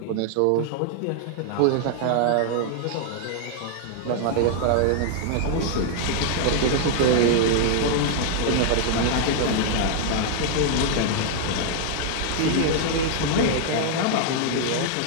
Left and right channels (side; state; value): both; different; correlation 0.00